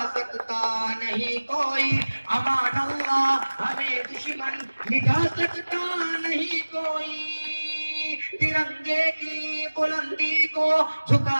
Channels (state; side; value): inverted; both; correlation -1.00